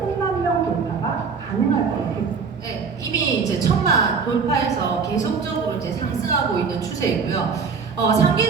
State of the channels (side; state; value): left; quieter; 5.4 dB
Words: 명 돌파가 가능할 것입니다. 네, 이미 이제 1000만 돌파해서 계속적으로 이제 상승하고 있는 추세이고요.